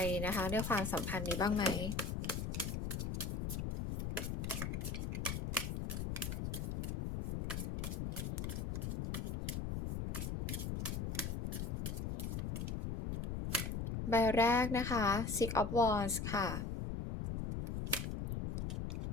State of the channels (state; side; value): noise; left; rumble, 2 dB below the sound